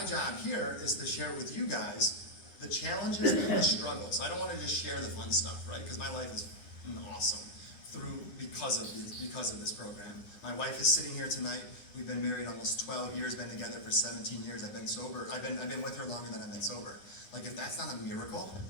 job here is to share with you guys the challenges and the struggles. I don't want to just share the fun stuff, right? Because my life is awesome because of this program. My wife is sitting here tonight. We've been married almost 12 years, been together for 17 years. I've been sober. I've been with her longer than I've been sober. Like, if that's not a miracle,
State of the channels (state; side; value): late; right; 9.7 ms